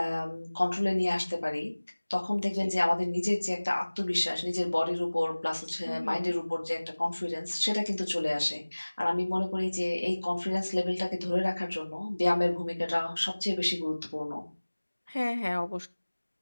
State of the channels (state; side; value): inverted; both; correlation -1.00